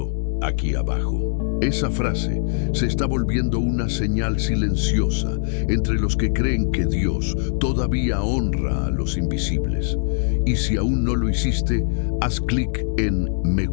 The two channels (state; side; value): silent; right; 62 dB below the other